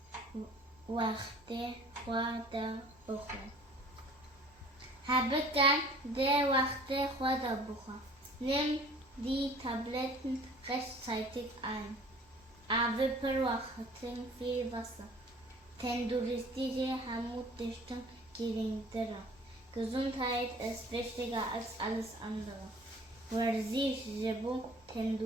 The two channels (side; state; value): both; normal; correlation 0.50